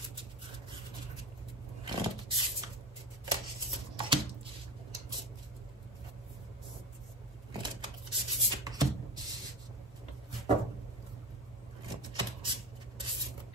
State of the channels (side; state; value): both; normal; correlation 0.26